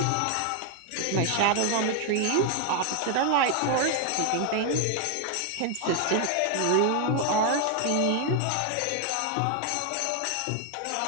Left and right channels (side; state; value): both; different; correlation 0.01